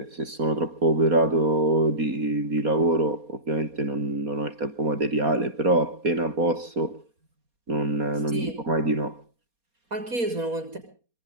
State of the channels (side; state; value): left; late; 4.2 ms